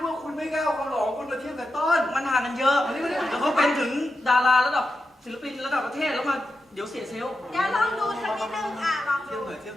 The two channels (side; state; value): both; normal; correlation 0.89